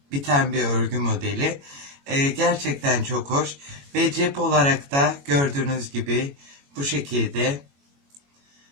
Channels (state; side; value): late; left; 21 ms